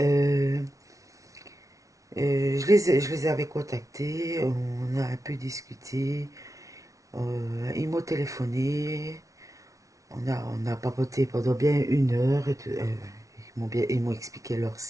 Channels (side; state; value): left; late; 0.16 ms